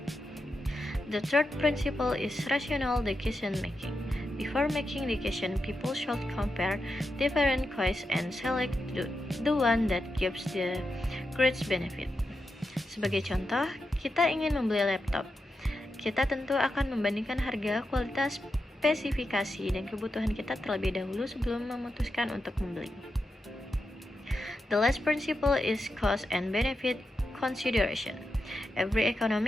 The third principle is rational decision making. Before making decision, people should compare different choices and select the one that gives the greatest benefit. Sebagai contoh, kita ingin membeli laptop. Kita tentu akan membandingkan harga, kualitas, spesifikasi, dan kebutuhan kita terlebih dahulu sebelum memutuskan untuk membeli. The last principle is cost and benefit consideration. Every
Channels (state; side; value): normal; both; correlation 0.87